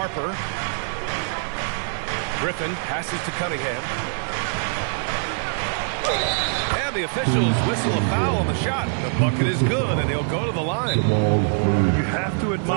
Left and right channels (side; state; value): left; silent; digital silence